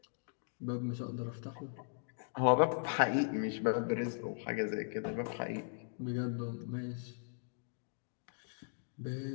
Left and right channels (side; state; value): right; silent; digital silence